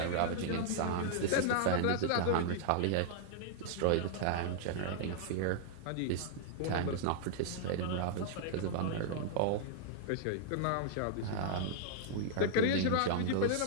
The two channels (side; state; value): both; different; correlation -0.01